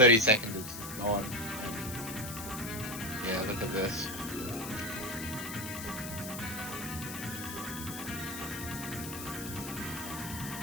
seconds is gone. Yeah, look at this.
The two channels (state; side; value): noise; left; hiss, 8 dB below the sound